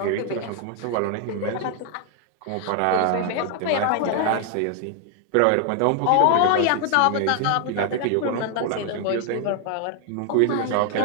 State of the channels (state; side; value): different; both; correlation 0.00